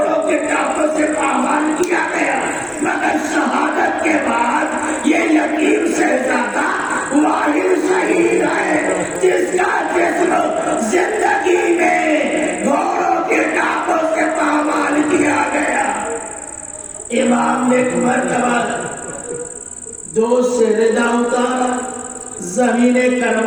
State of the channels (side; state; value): both; identical; correlation 1.00